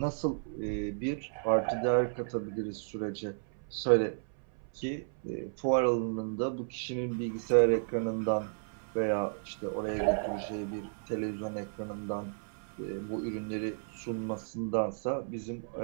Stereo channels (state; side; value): silent; left; 56 dB below the other